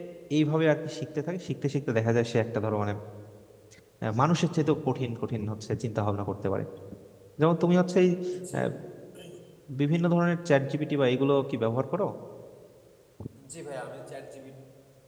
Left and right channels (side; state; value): both; identical; correlation 1.00